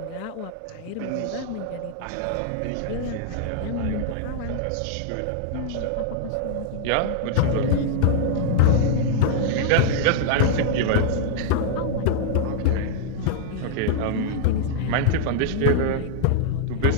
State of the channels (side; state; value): both; different; correlation -0.01